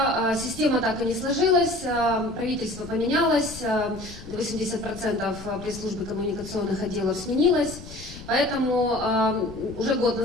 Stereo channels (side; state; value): left; noise; rumble, 15 dB below the sound